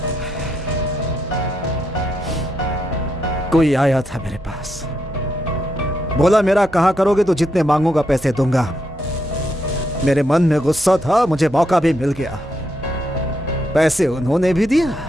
कोई आया था मेरे पास, बोला मेरा कहा करोगे तो जितने मांगूंगा पैसे दूंगा। मेरे मन में गुस्सा था, मुझे मौका भी मिल गया। पैसे उन्होंने भी दिया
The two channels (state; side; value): noise; right; hum, 21 dB below the sound